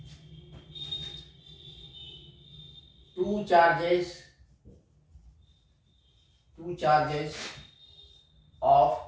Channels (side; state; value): both; identical; correlation 1.00